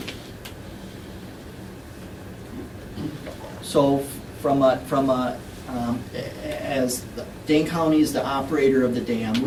So as Dane County is the operator of the dam,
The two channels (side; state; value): both; identical; correlation 1.00